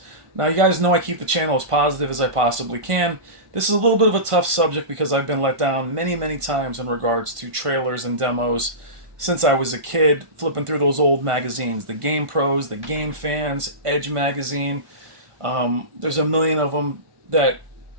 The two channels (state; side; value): late; left; 1.5 ms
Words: Now, you guys know I keep the channel as positive as I possibly can. This is a little bit of a tough subject because I've been let down many, many times in regards to trailers and demos since I was a kid, flipping through those old magazines, the Game Pros, the Game Fans, Edge magazine. There's a million of them that,